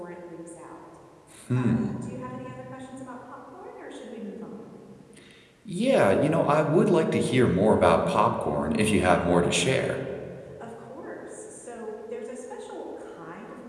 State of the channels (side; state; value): both; identical; correlation 1.00